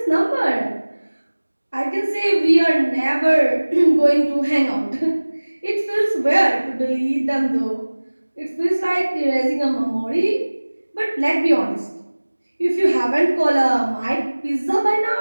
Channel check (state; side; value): inverted; both; correlation -1.00